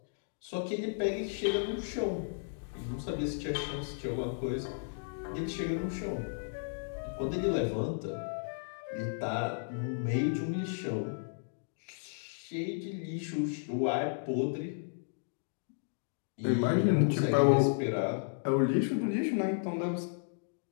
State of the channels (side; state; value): right; silent; digital silence